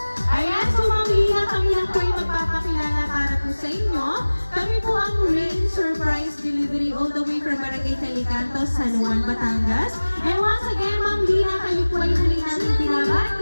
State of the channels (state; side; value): inverted; both; correlation -1.00